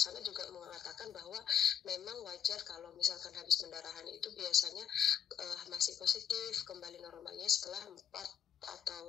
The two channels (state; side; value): quieter; right; 8.6 dB